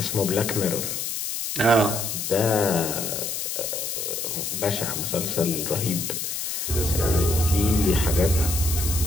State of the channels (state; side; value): noise; left; hiss, 3 dB below the sound